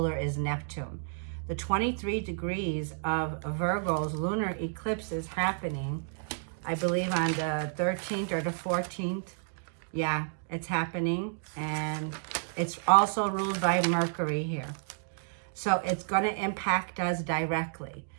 is Neptune. The 23 degrees of Virgo's lunar eclipse is happening, I believe, on the 13th or the 14th. Yeah, it's happening. And it's also ruled by Mercury here. So it's going to impact us directly.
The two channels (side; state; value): left; silent; digital silence